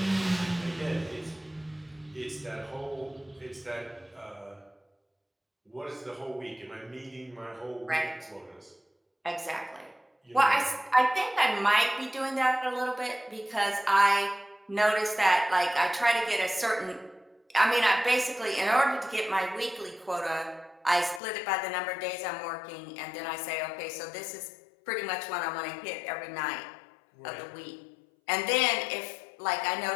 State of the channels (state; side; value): drops out; right; at 21.2 s